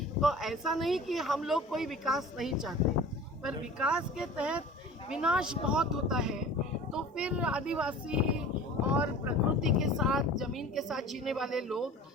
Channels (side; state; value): both; normal; correlation 0.41